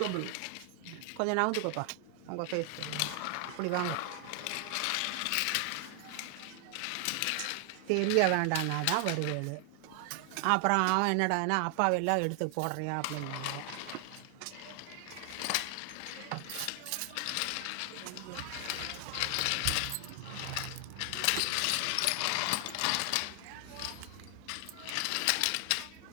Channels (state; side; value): different; both; correlation 0.00